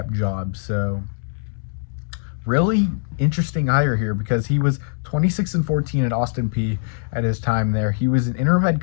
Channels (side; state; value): right; silent; digital silence